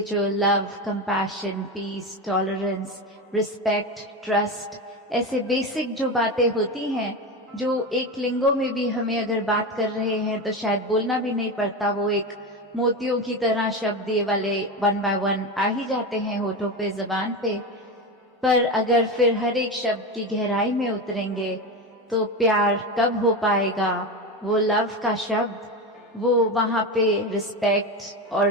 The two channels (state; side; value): normal; both; correlation 0.20